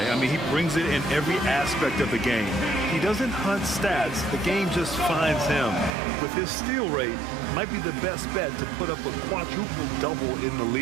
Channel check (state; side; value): drops out; left; at 5.9 s